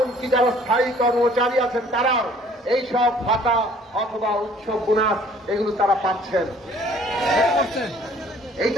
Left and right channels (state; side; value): normal; both; correlation 0.56